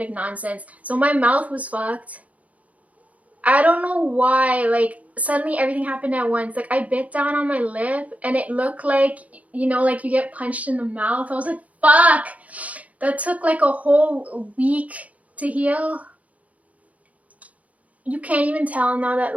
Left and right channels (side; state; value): left; late; 0.069 ms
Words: nonsense. So my mouth was fucked. I don't know why. Like suddenly everything happened at once. Like I bit down on my lip and it looked like, you know, like you get punched in the mouth. I was like, fuck. That took like a whole week to heal. You can't even tell now that